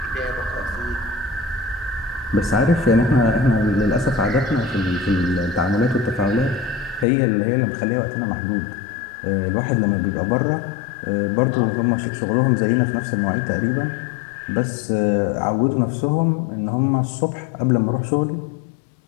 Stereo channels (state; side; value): drops out; right; at 7.1 s